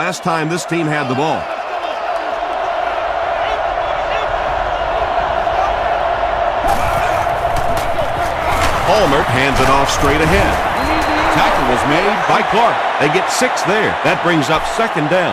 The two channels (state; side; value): identical; both; correlation 1.00